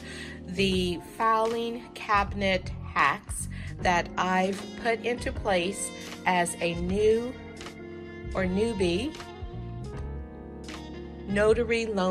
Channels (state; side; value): identical; both; correlation 1.00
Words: the filing cabinet hacks that I've put into place as a new or newbie notary